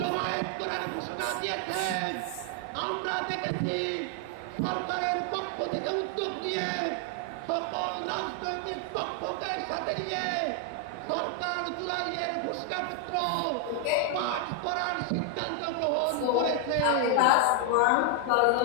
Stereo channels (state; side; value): different; both; correlation 0.00